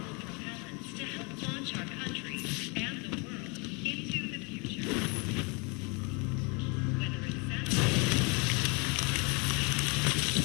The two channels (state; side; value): quieter; right; 30.9 dB